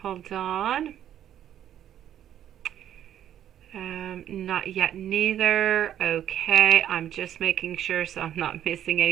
Hold on. Not yet neither. Okay, I'm just making sure so I'm not missing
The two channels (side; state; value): left; quieter; 10.7 dB